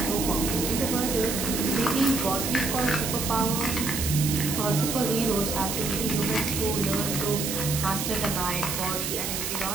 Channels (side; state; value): right; noise; hiss, 3 dB below the sound